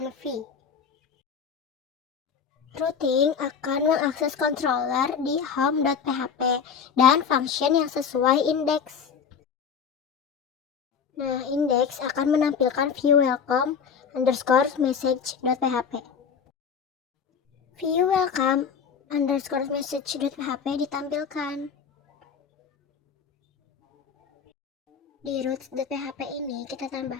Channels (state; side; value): quieter; right; 6.6 dB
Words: Routing akan mengakses controller di home.php dan function yang sesuai indeks. Nah, indeks akan menampilkan view welcome underscore message.php. View welcome underscore message.php ditampilkan. Di root.php ini kita